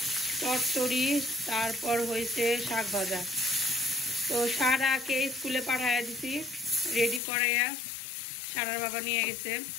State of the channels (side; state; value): right; drops out; at 7.2 s